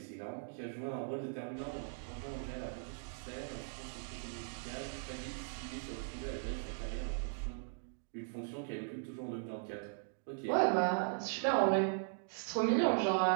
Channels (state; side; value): silent; left; digital silence